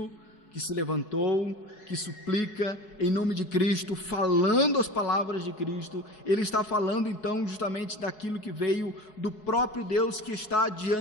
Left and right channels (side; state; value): right; late; 4.7 ms